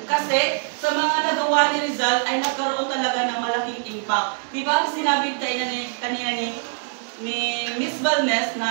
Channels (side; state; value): left; silent; 63 dB below the other